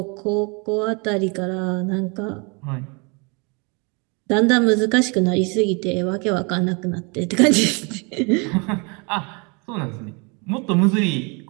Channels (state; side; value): quieter; left; 31.6 dB